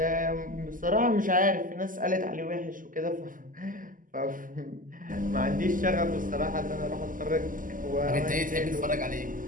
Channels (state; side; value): late; left; 0.39 ms